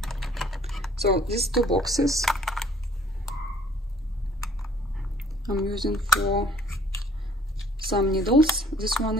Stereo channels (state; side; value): normal; both; correlation 0.58